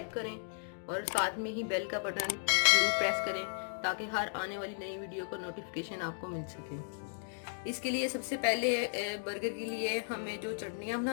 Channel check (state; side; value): silent; right; digital silence